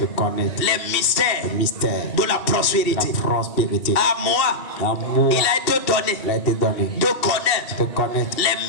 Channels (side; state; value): right; late; 2.7 ms